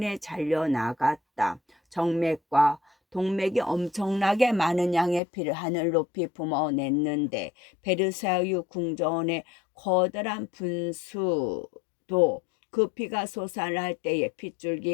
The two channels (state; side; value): drops out; right; at 5.2 s